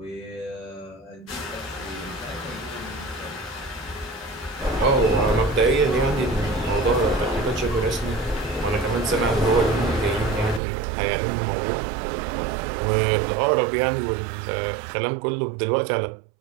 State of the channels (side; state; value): left; drops out; at 10.6 s